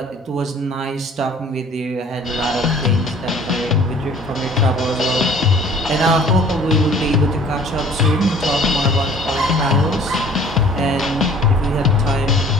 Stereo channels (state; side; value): normal; both; correlation 0.51